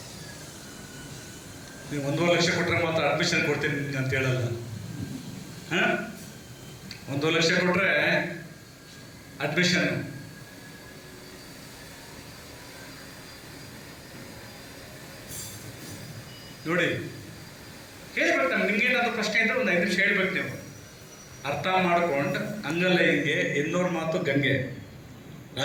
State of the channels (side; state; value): both; identical; correlation 1.00